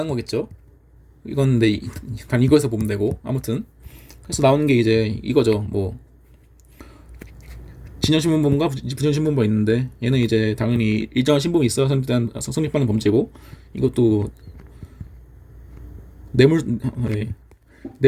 거겠죠. 이건 근데 단 이거에서 보면 되고, 아무튼 그래서 나오는 게 이제 이거죠. 진전신분범과 부전신분범이 있는데, 얘는 이제 당연히 일정한 신분이 있어야 성립하는 범죄고, 이것도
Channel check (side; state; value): both; identical; correlation 1.00